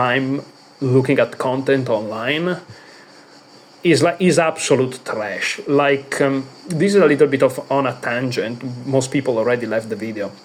looking at content online. Is absolute trash. Like this is a little bit of on a tangent. Most people already left the video,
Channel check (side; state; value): both; identical; correlation 1.00